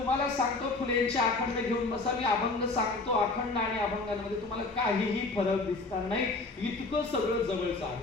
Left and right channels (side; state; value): right; quieter; 3.4 dB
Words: सांगतो फुलेंचे अखंड घेऊन बसा. मी अभंग सांगतो. अखंड आणि अभंगांमध्ये तुम्हाला काहीही फरक दिसणार नाही. इतकं सगळं जवळचं